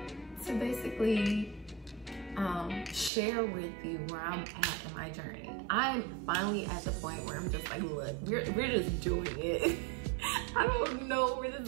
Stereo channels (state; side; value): drops out; left; at 3.1 s